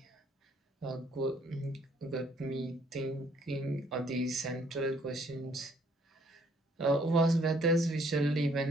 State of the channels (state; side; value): normal; both; correlation 0.64